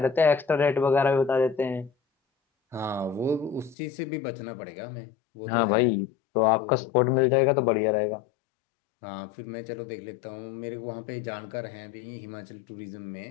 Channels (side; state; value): right; drops out; at 3.8 s